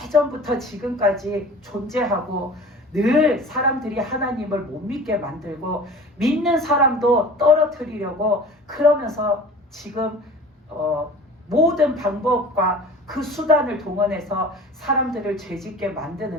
예전부터 지금까지 존재하고 늘 사람들이 하나님을 못 믿게 만들고 믿는 사람도 떨어뜨리려고 그러면서 지금 모든 방법과 그 수단을 동원해서 사람들을 죄짓게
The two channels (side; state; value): both; normal; correlation 0.41